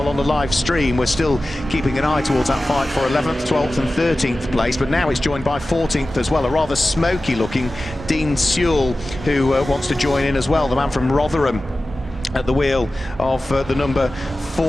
On the live stream, we're still keeping an eye towards that fight for 11th, 12th and 13th place, but now it's joined by 14th as well, a rather smoky looking Dean Sewell, who wants to join in as well, the man from Rotherham at the wheel of the number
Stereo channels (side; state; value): both; normal; correlation 0.95